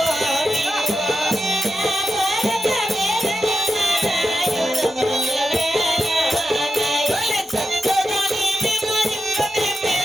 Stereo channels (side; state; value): both; normal; correlation 0.89